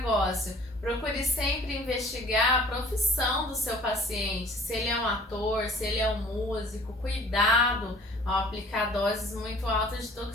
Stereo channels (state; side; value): normal; both; correlation 0.51